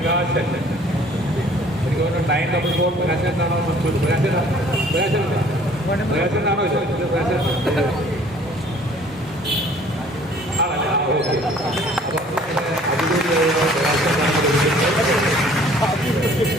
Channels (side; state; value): both; normal; correlation 0.55